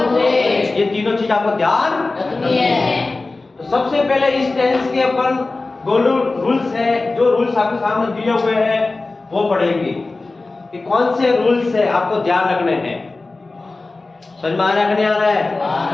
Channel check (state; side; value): quieter; right; 3.4 dB